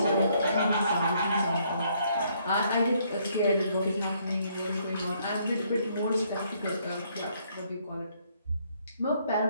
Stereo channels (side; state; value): both; inverted; correlation -0.69